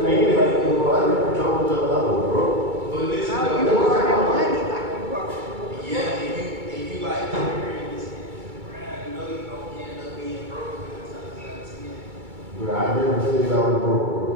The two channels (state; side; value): late; left; 2.2 ms